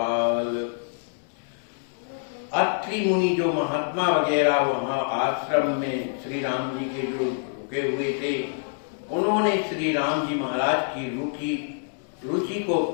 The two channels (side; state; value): right; silent; 61 dB below the other